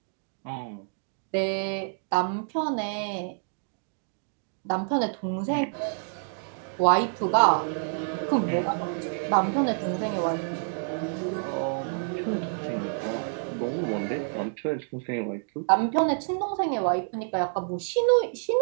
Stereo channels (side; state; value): left; silent; 59 dB below the other